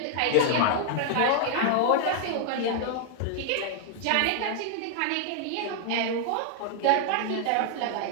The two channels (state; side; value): different; both; correlation 0.00